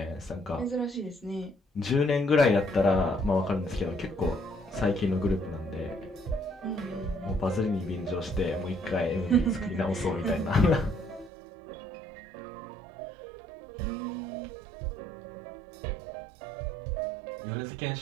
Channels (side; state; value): left; drops out; at 11.3 s